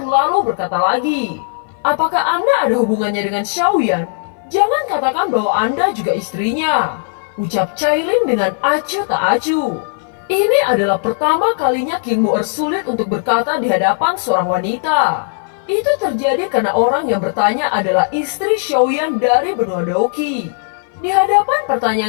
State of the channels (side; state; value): right; silent; 59 dB below the other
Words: lalu berkata lagi, "Apakah Anda ada hubungannya dengan Xiaoyan? Jangan katakan bahwa Anda juga istrinya," ucap Cailin dengan acuh tak acuh. Ini adalah pertama kalinya King Mu'er sulit untuk berkata di hadapan seorang wanita. Itu terjadi karena orang yang bertanya adalah istri Xiaoyan dari benua Doqi. Di hadapan